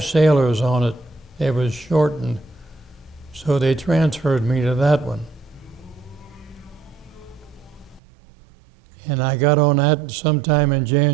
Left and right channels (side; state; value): left; drops out; at 8.0 s